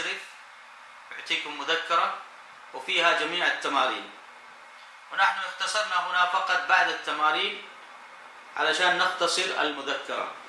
يعطيكم مذكرة وفيها جميع التمارين، ونحن اختصرنا هنا فقط بعد التمارين علشان نختصر المذكرة.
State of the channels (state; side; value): identical; both; correlation 1.00